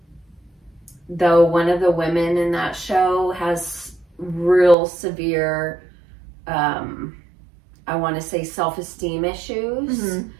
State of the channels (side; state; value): left; drops out; at 4.8 s